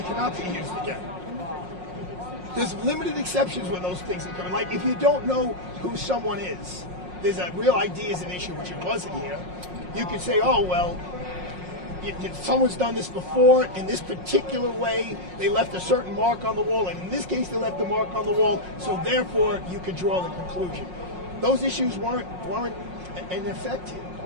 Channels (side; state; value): left; late; 5.5 ms